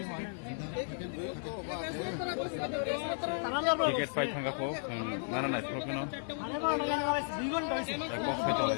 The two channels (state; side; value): silent; right; 55 dB below the other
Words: হয় tiket পাই থাকা হোক নানা নাই প্রশ্ন বক্স হইতে